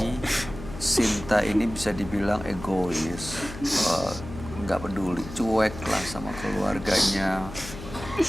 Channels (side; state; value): left; noise; hum, 12 dB below the sound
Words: Sinta ini bisa dibilang egois, nggak peduli, cuek lah sama keluarganya,